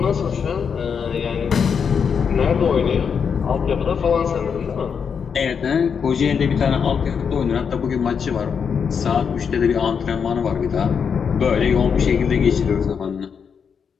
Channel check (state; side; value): quieter; right; 6.6 dB